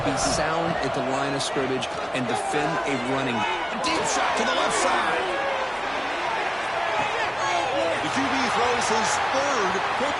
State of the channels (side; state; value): both; identical; correlation 1.00